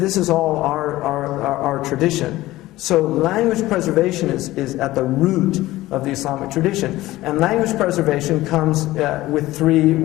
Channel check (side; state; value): right; quieter; 17.1 dB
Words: is all our tradition. So language preservation is at the root of the Islamic tradition. And language preservation comes with 3,